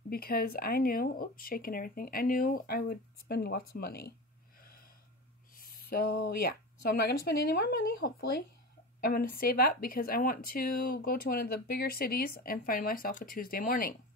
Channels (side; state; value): both; normal; correlation 0.28